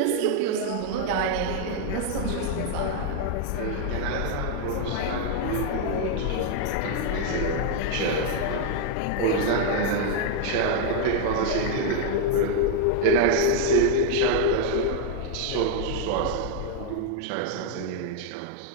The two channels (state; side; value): different; both; correlation 0.00